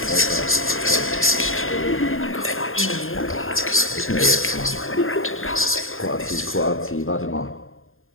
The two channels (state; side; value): late; right; 0.60 ms